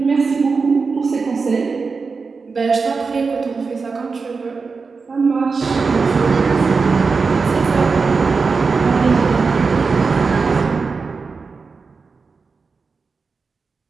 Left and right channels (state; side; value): quieter; left; 4.7 dB